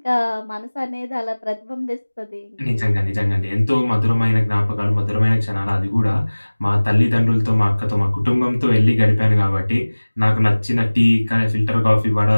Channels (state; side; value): inverted; both; correlation -1.00